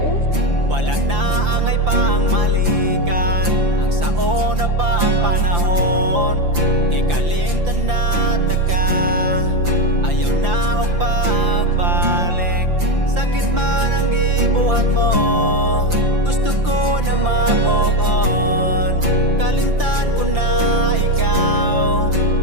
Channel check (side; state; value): left; late; 5.8 ms